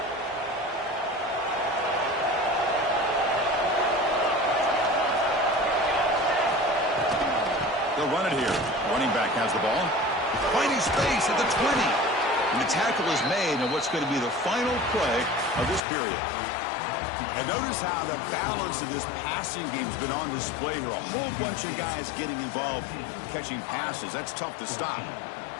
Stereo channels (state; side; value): drops out; right; at 15.8 s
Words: They'll run it here. Running back has the ball. Finding space at the 20. And the tackle is made on what's going to be the final play of this period. And notice how the balance of this passing game has been on display here. A whole bunch of guys getting involved catching passes. That's tough to stop.